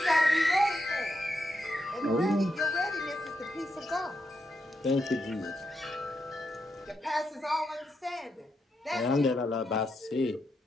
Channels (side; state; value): both; normal; correlation 0.83